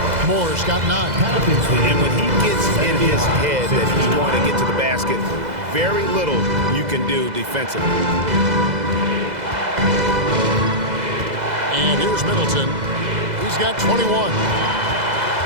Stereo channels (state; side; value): late; left; 2.0 ms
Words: Moore's got 9. And when he gets in his head that he's going to get to the basket, very little you can do defensively. And here's Middleton. He's got 21.